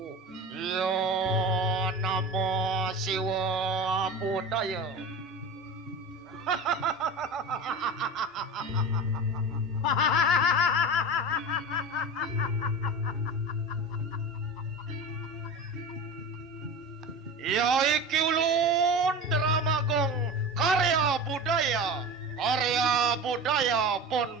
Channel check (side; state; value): both; normal; correlation 0.30